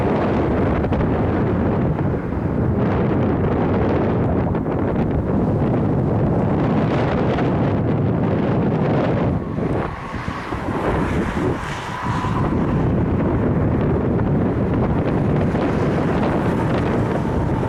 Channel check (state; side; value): identical; both; correlation 1.00